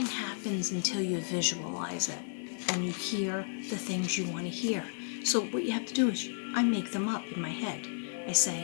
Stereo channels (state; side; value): silent; right; 56 dB below the other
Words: happens until you visualize it and you hear the things you want to hear. So what you have to do is I make them up in my head. I